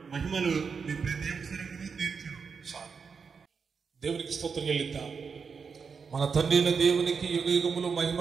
మహిమలు మీ ప్రతి అవసరమును తీర్చును. దేవునికి స్తోత్రం చెల్లిద్దాం. మన తండ్రి అయిన దేవునికి యుగయుగములు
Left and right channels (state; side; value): quieter; left; 5.7 dB